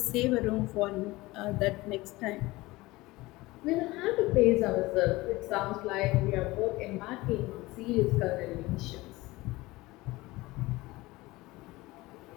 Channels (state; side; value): quieter; right; 20.3 dB